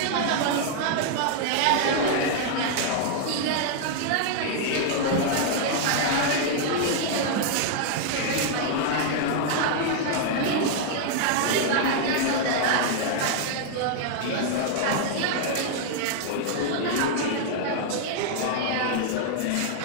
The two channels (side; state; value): both; different; correlation 0.00